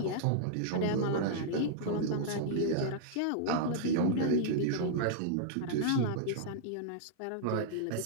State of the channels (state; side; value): different; both; correlation -0.02